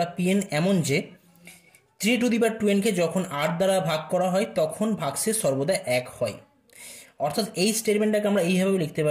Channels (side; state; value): both; identical; correlation 1.00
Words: pn এমন যে 3^2n কে যখন 8 দ্বারা ভাগ করা হয় তখন ভাগশেষ সর্বদা 1 হয়। অর্থাৎ এই স্টেটমেন্টটাকে আমরা এইভাবে লিখতে